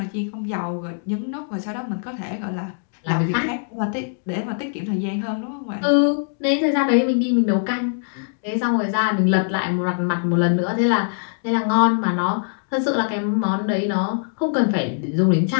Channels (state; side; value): silent; right; digital silence